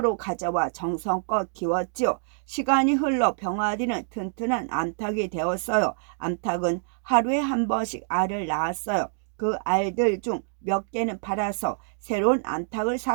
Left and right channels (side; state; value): left; silent; digital silence